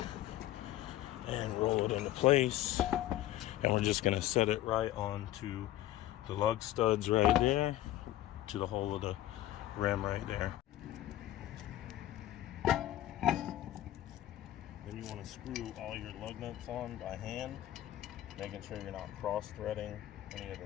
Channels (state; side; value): quieter; right; 14.2 dB